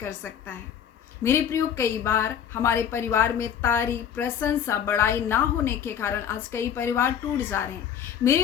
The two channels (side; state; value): right; quieter; 8.8 dB